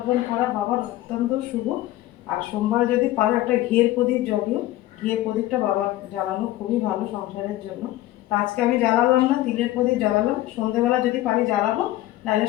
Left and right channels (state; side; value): quieter; right; 15.4 dB